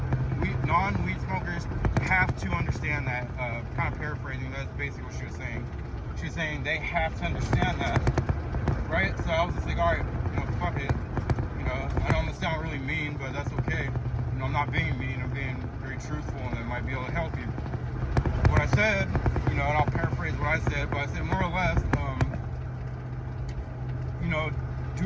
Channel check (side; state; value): both; identical; correlation 1.00